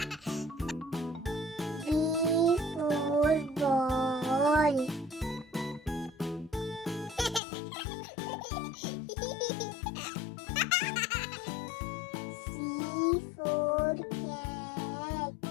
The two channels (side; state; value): right; drops out; at 7.4 s